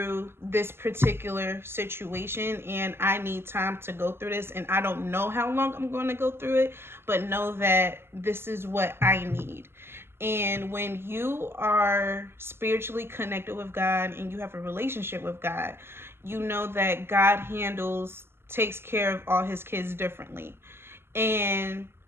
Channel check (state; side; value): late; left; 0.12 ms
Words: this particular situation and I need time to go through this, and I don't know how long I'm going to go through it, but know that this is what I need. And when you are spiritually connected with God and you have a relationship with God, you know that God takes care of all his kids differently. And